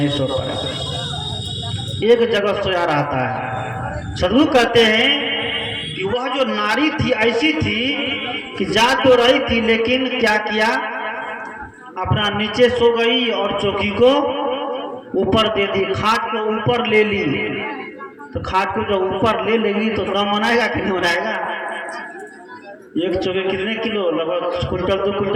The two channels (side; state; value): both; identical; correlation 1.00